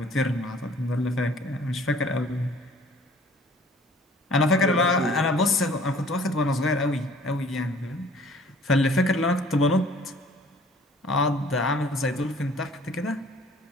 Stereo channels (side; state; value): both; normal; correlation 0.53